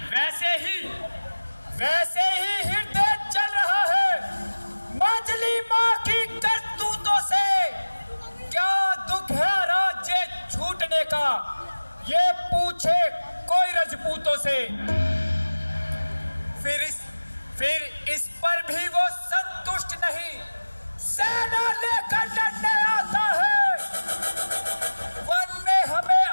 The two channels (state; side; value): inverted; both; correlation -1.00